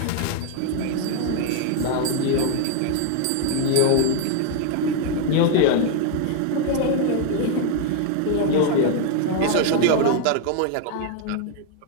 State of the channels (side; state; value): both; different; correlation 0.00